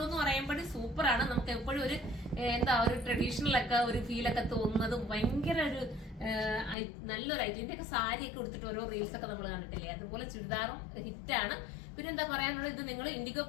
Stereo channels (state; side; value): drops out; right; at 6.8 s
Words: എന്ന് പറയുമ്പോൾ സൂപ്പർ ആണ്. നമുക്ക് എപ്പോഴും ഒരു ഒരു ട്രഡീഷണൽ ഒക്കെ ഒരു ഫീലൊക്കെ തോന്നുന്നതും ഭയങ്കര ഒരു നല്ലൊരു ഐറ്റം. ഇതിന്റെ ഒക്കെ സാരി ഒക്കെ കൊടുത്തിട്ട് ഓരോ റീൽസ് ഒക്കെ നമ്മൾ കണ്ടിട്ടില്ലേ, അതുപോലെ ചുരിദാറും ഹിറ്റാണ്. പിന്നെ എന്താ പറയാനുള്ളത്, ഇത് നിങ്ങൾ ഇൻഡിഗോ